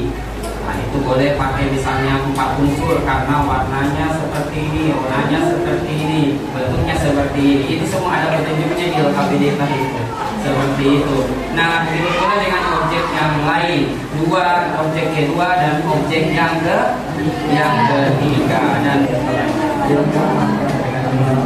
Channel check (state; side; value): identical; both; correlation 1.00